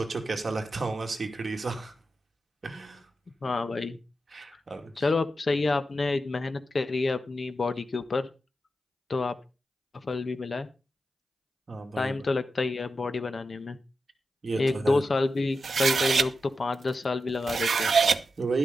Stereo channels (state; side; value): normal; both; correlation 0.89